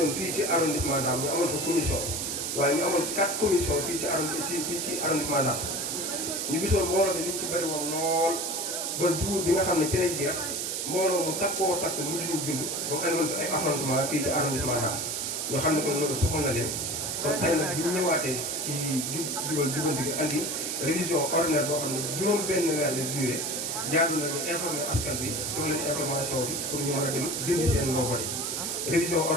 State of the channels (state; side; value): noise; right; hiss, 2 dB below the sound